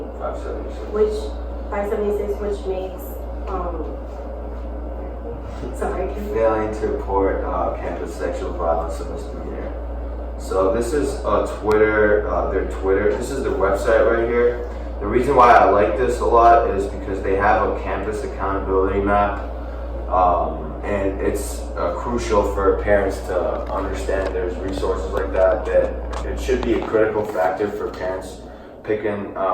576, which makes failing to report campus sexual violence a misdemeanor. So this is Twitter, their Twitter. This is their website right here. The reason why I like this a lot is because they have a campus accountability map, and it's crucial for parents to understand there's resources like that it should be a critical factor for parents picking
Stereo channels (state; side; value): identical; both; correlation 1.00